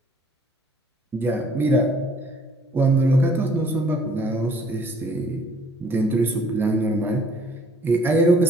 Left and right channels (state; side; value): normal; both; correlation 0.59